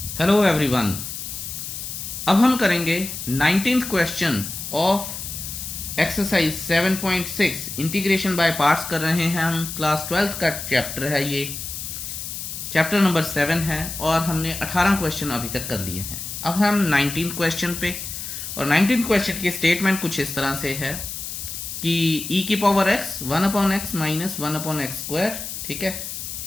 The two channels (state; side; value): noise; left; hiss, 7 dB below the sound